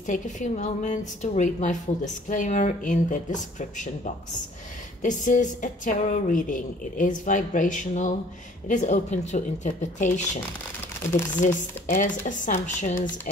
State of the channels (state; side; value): normal; both; correlation 0.55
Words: take a few moments to read my full disclaimer in the description box. This is a tarot reading. It is vibrational. It is open to interpretation. It exists as assumptions